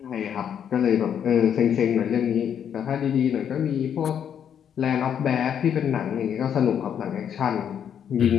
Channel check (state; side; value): quieter; right; 8.7 dB